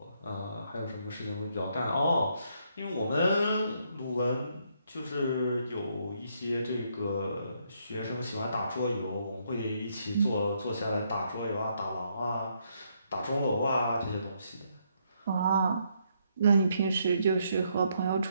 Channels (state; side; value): inverted; both; correlation -0.74